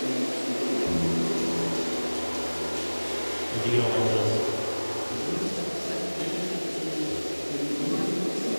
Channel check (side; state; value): both; inverted; correlation -1.00